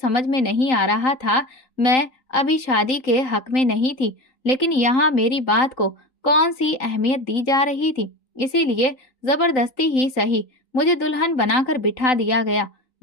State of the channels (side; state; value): right; late; 3.9 ms